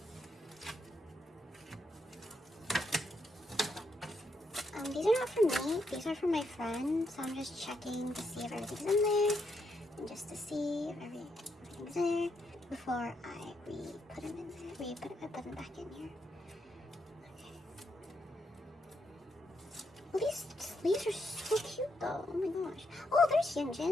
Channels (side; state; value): both; normal; correlation 0.79